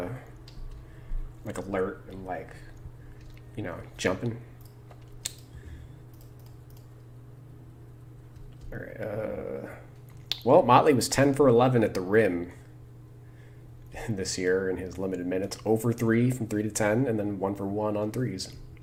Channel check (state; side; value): identical; both; correlation 1.00